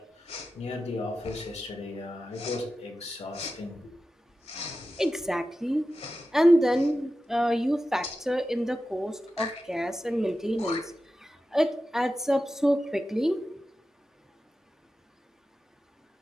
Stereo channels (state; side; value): normal; both; correlation 0.93